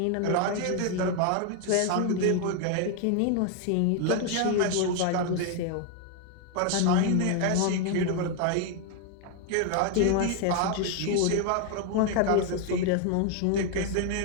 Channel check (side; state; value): both; different; correlation 0.01